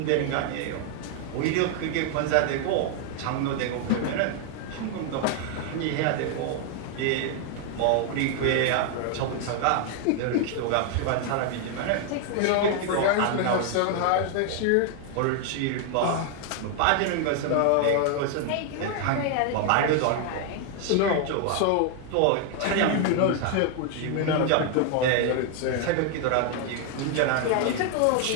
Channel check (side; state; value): both; different; correlation 0.00